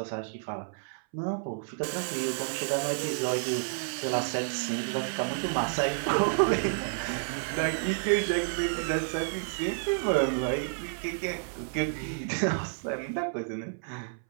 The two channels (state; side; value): silent; left; 58 dB below the other